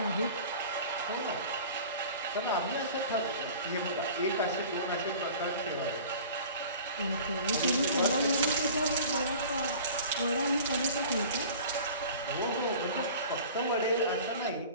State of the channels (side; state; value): both; inverted; correlation -0.42